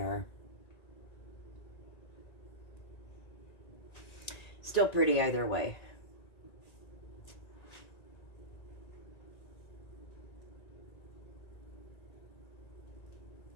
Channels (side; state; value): right; late; 1.9 ms